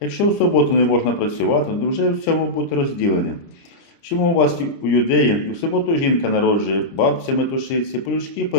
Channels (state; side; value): late; right; 30 ms